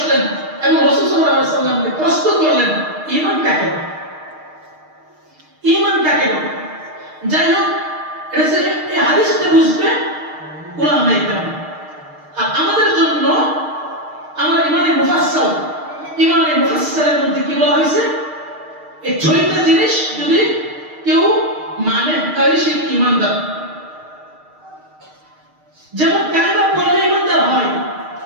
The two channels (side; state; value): left; late; 6.5 ms